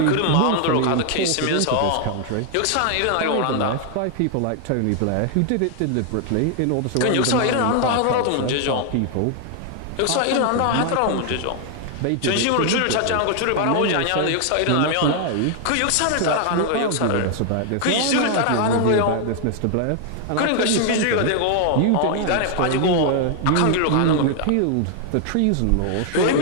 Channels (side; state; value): both; different; correlation 0.00